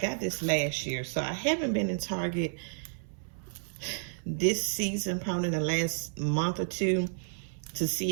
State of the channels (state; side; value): silent; left; 57 dB below the other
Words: this last year, so I haven't been in Target this season, probably in the last month or two, to see